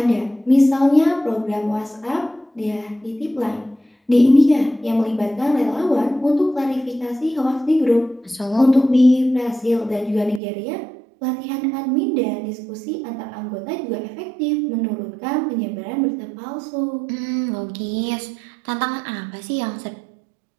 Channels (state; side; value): drops out; left; at 10.4 s